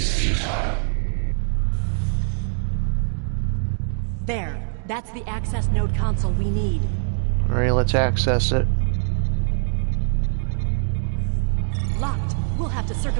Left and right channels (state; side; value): silent; left; digital silence